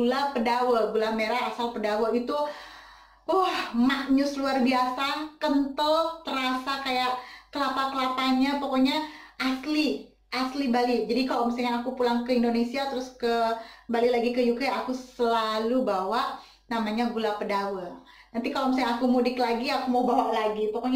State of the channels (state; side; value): identical; both; correlation 1.00